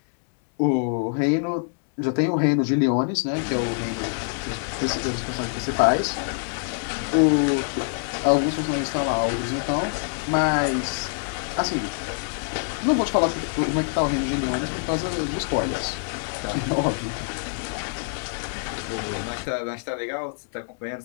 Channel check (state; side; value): silent; right; digital silence